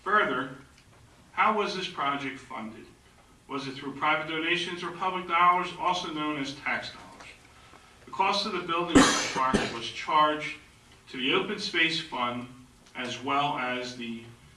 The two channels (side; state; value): both; identical; correlation 1.00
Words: further, how was this project funded? Was it through private donations or public dollars, also known as tax dollars? The cost of the building of the park was charged to the Open Space Fund as well as the